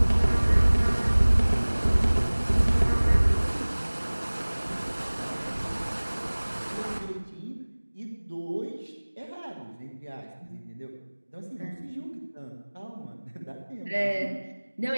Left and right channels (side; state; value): both; inverted; correlation -1.00